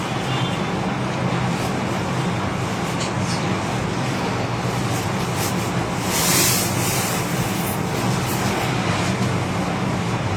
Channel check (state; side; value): identical; both; correlation 1.00